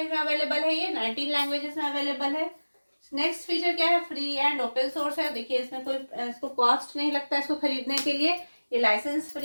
में अवेलेबल है, ये 19 लैंग्वेजेस में अवेलेबल है। नेक्स्ट फीचर क्या है, फ्री एंड ओपन सोर्स है। देखिए इसमें कोई इसको कॉस्ट नहीं लगता है इसको खरीदने के लिए, ये लाइसेंस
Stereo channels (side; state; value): both; inverted; correlation -1.00